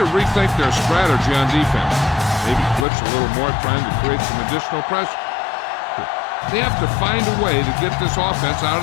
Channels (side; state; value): right; drops out; at 2.9 s